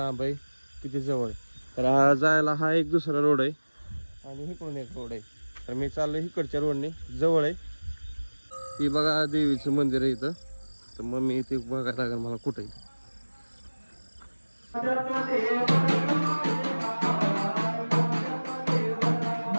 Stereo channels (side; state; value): both; inverted; correlation -1.00